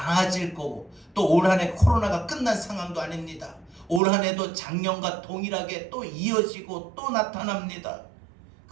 거고 또 올 한 해 코로나가 끝난 상황도 아닙니다. 올 한 해도 작년과 동일하게 또 이어지고 또 나타납니다.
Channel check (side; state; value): left; drops out; at 4.0 s